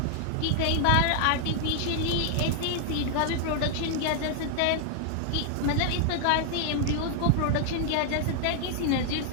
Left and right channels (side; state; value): both; different; correlation 0.00